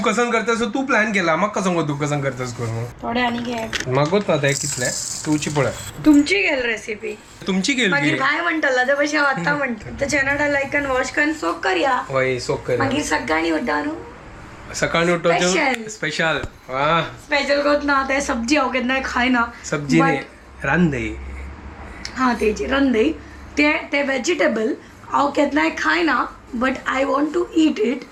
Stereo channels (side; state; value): both; identical; correlation 1.00